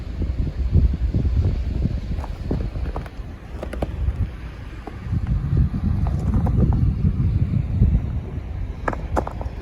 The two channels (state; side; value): identical; both; correlation 1.00